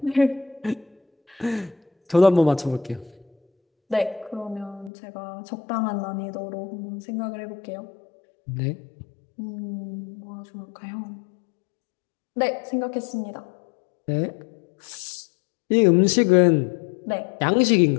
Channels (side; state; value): right; drops out; at 4.9 s